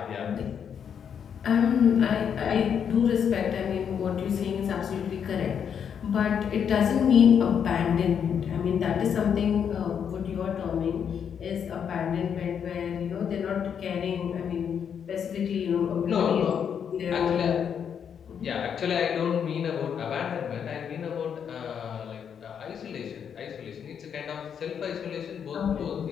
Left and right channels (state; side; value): quieter; right; 7.8 dB